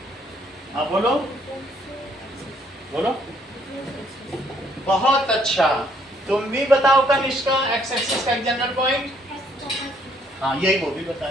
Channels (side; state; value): both; normal; correlation 0.67